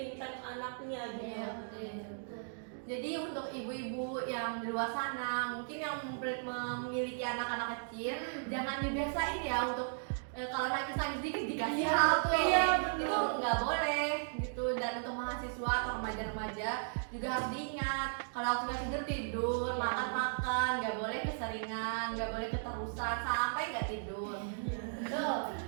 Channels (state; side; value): silent; left; digital silence